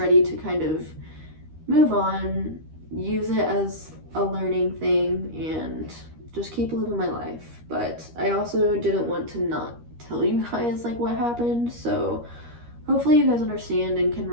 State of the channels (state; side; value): late; left; 13 ms